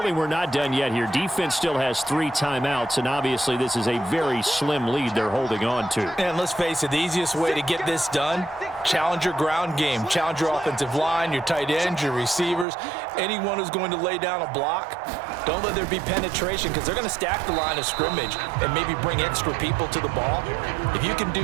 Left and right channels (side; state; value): left; drops out; at 12.7 s